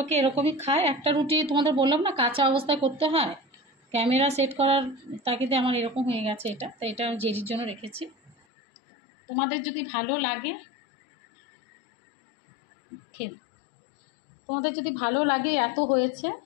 এরকমই খায়। একটা রুটি তোমাদের বললাম না কাঁচা অবস্থায় করতে হয়, ক্যামেরা সেট করার তাগিদে আমার এরকম হয়ে গেছে এটা, তো এটা আমি জেরির জন্য রেখেছি। তোমাদের যদি ভালো লাগে তোমাদের যদি ভালো লাগে, এত হয়েছে,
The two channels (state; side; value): drops out; right; at 8.3 s